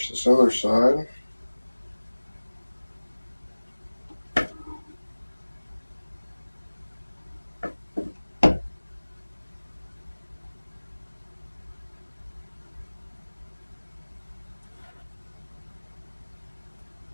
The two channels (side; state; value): both; inverted; correlation -1.00